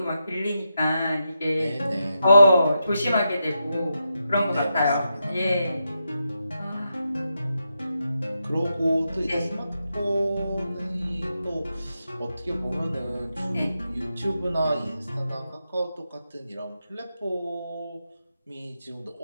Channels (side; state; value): both; inverted; correlation -0.86